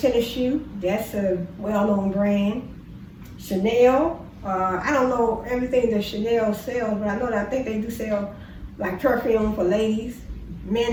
shoe. That's a well-known brand. Chanel. I don't know everything that Chanel sells, but I think they do sell like perfume for ladies,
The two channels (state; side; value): identical; both; correlation 1.00